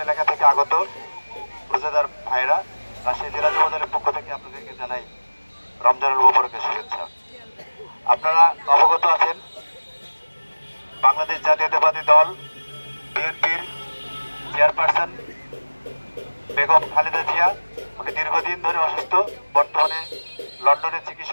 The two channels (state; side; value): inverted; both; correlation -1.00